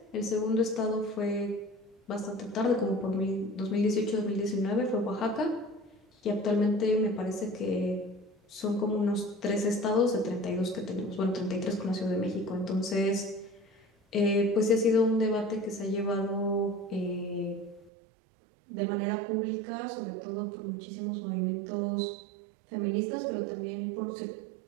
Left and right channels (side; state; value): left; drops out; at 17.9 s